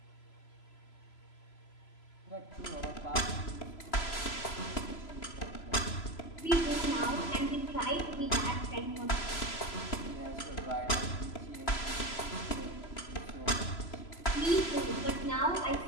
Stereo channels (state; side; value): late; right; 3.0 ms